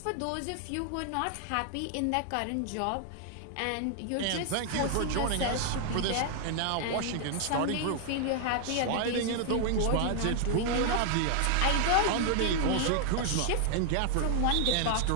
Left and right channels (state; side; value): different; both; correlation 0.00